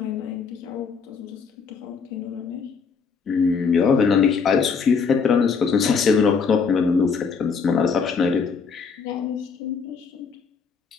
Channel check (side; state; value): right; quieter; 5.6 dB